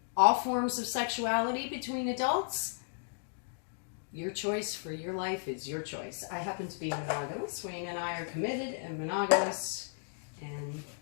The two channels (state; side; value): silent; right; digital silence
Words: all forms of sexuality between adults. Your choice for your life is your choice. I happen to be monogamous. Wayne and I are committed and monogamous. And